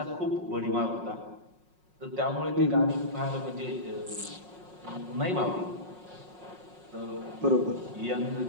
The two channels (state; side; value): late; left; 5.5 ms